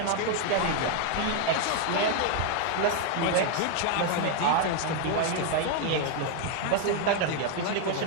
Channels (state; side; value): different; both; correlation 0.01